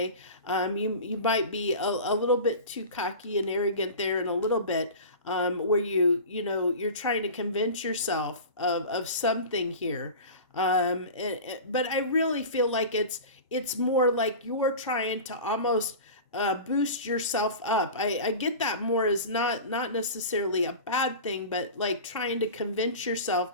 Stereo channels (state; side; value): inverted; both; correlation -0.34